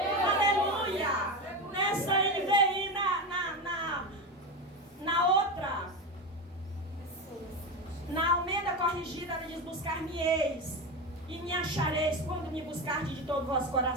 Aleluia. Nessa NVI, na outra, na Almeida Corrigida, ele diz: buscar-me-eis e me achareis quando me buscardes de todo o vosso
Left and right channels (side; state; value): both; normal; correlation 0.19